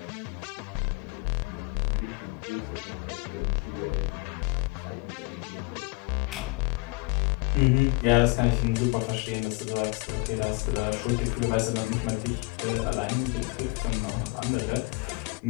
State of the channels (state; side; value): quieter; right; 27.6 dB